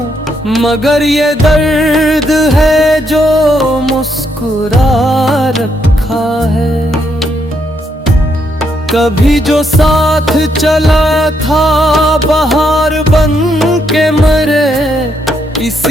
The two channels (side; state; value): both; normal; correlation 0.76